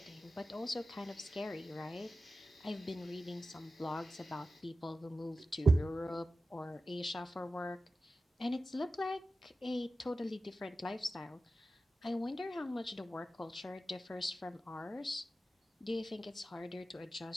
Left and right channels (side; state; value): both; normal; correlation 0.94